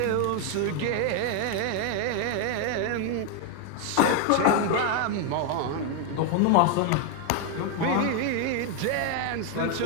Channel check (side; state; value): both; different; correlation 0.00